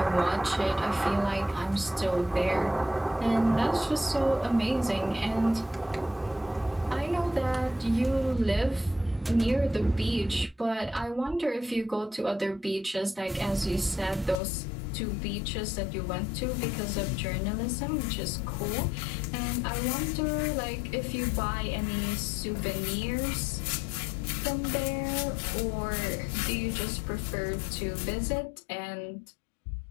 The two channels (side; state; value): right; drops out; at 14.4 s